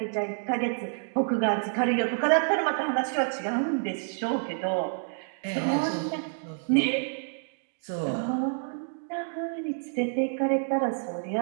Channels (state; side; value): silent; left; 59 dB below the other